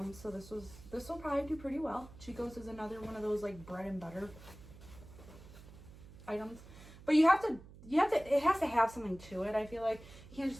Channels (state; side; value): noise; right; hum, 18 dB below the sound